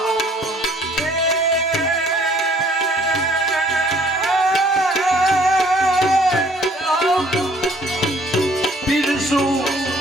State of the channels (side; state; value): both; normal; correlation 0.59